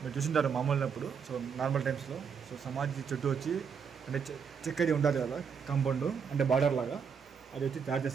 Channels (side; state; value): left; quieter; 6.5 dB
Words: చూసింటారు మామూలున్నప్పుడు సో నార్మల్ టైమ్స్లో సో సమాధి చుట్టూ వచ్చి అంటే చెక్కది ఉంటుంది కదా కాంపౌండ్ అంటే బార్డర్ లాగా అది వచ్చి తయారు